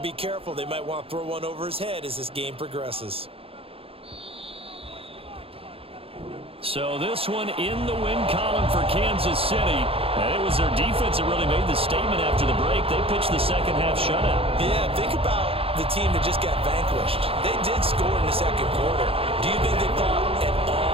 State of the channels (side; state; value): left; late; 0.27 ms